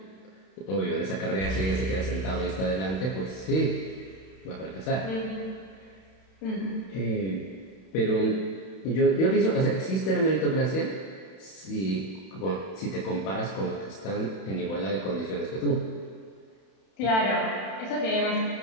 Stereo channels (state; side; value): late; right; 31 ms